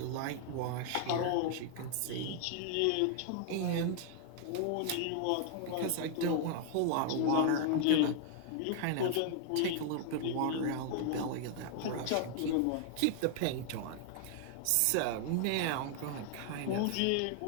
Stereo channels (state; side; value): different; both; correlation 0.00